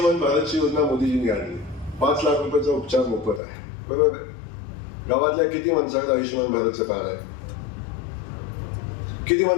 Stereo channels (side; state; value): right; drops out; at 3.4 s